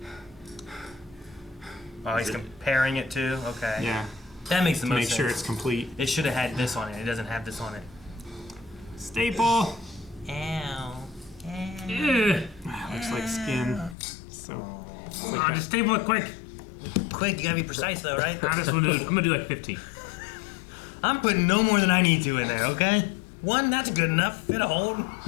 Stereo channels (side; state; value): right; drops out; at 14.0 s